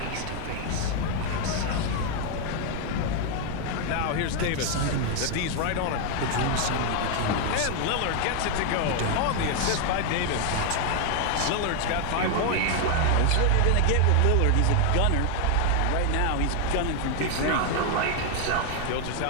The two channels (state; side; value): different; both; correlation 0.00